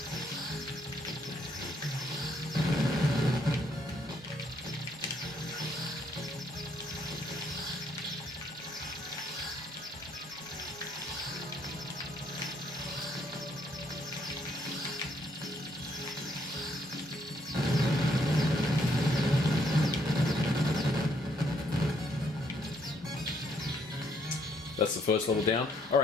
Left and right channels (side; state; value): both; normal; correlation 0.70